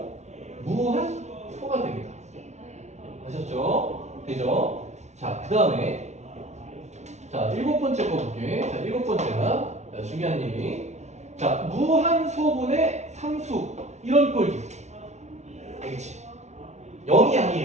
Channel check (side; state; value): left; late; 0.32 ms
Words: 무한소가 됩니다. 아셨죠? 되죠? 자, 그 다음에 자, 7번째 거 볼게. 자, 7번째가 중요한 얘기. 자, 무한소분의 상수 이런 꼴도 있어. 알겠지? 0이